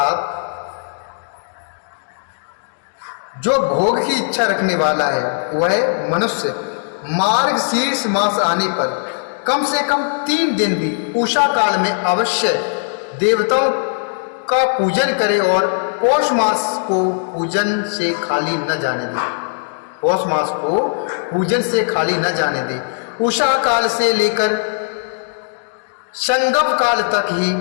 जो भोग की इच्छा रखने वाला है वह मनुष्य मार्गशीर्ष मास आने पर कम से कम 3 दिन भी उषा काल में अवश्य देवताओं का पूजन करे और पौष मास को पूजन से खाली न जाने दे। पौष मास को पूजन से खाली न जाने दे। उषा काल से लेकर संगम काल तक ही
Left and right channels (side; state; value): right; silent; digital silence